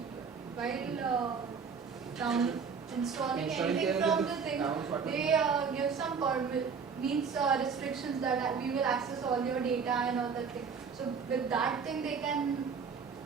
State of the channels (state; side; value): quieter; left; 5.9 dB